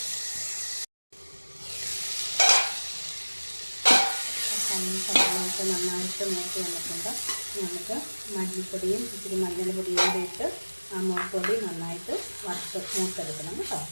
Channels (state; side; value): inverted; both; correlation -1.00